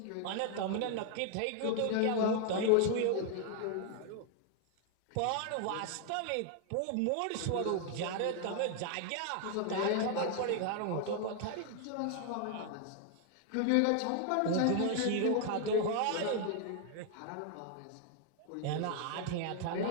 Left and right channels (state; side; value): different; both; correlation 0.00